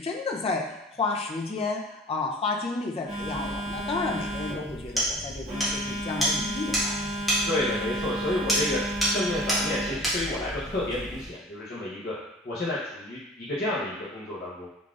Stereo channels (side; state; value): both; normal; correlation 0.44